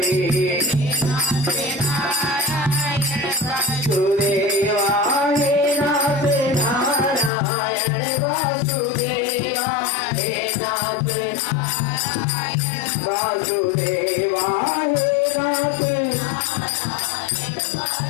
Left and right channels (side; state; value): right; drops out; at 7.3 s